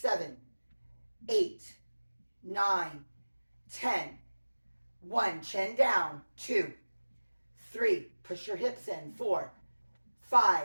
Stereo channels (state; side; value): inverted; both; correlation -1.00